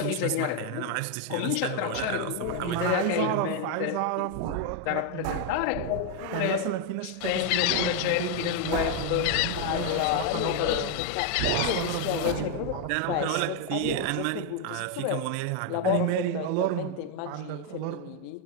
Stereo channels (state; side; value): different; both; correlation 0.01